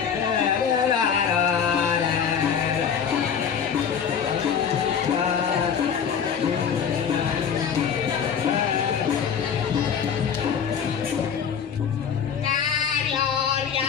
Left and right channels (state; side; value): quieter; right; 7.3 dB